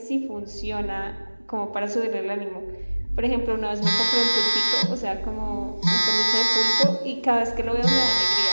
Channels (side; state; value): both; inverted; correlation -1.00